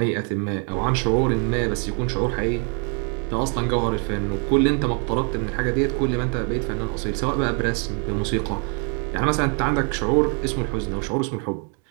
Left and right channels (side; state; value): left; quieter; 38.7 dB